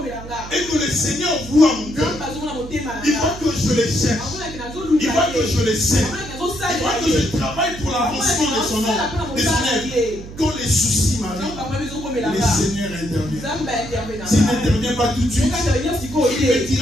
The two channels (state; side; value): noise; right; hum, 13 dB below the sound